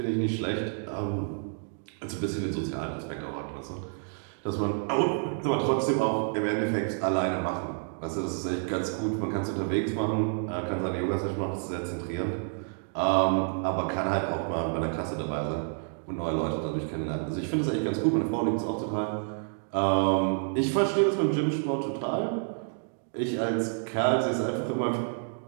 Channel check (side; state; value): left; silent; 58 dB below the other